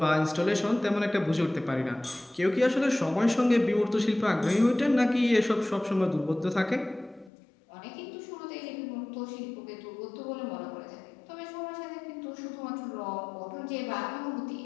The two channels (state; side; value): drops out; right; at 7.3 s